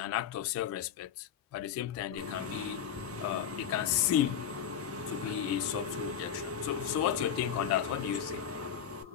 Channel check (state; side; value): quieter; right; 8.6 dB